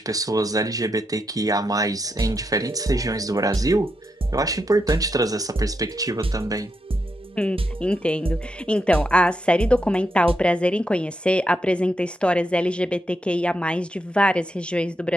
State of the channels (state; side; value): normal; both; correlation 0.83